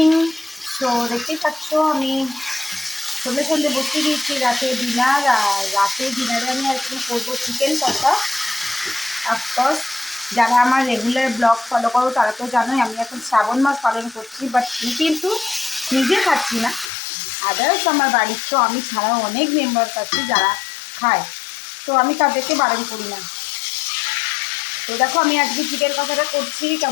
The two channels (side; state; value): right; drops out; at 16.9 s